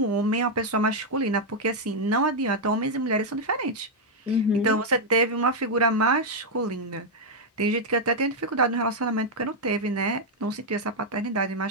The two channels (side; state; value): both; normal; correlation -0.01